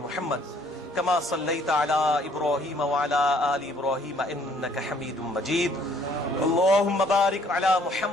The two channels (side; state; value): both; normal; correlation 0.62